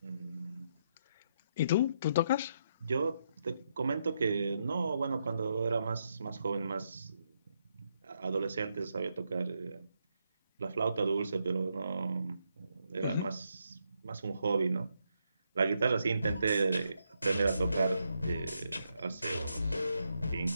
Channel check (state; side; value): inverted; both; correlation -0.79